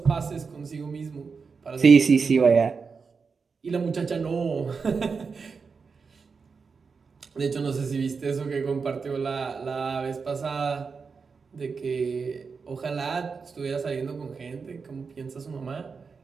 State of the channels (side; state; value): left; quieter; 5.2 dB